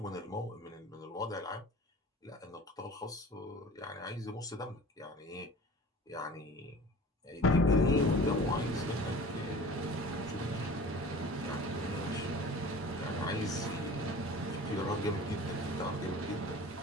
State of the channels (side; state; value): both; normal; correlation 0.41